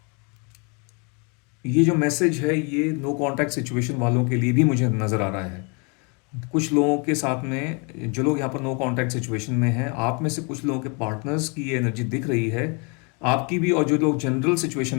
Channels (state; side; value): quieter; right; 33.5 dB